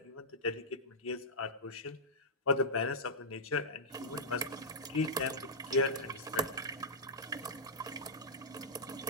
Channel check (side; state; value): both; normal; correlation -0.11